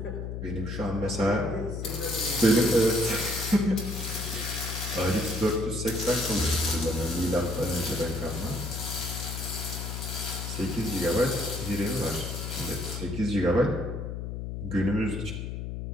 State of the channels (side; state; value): left; noise; hum, 5 dB below the sound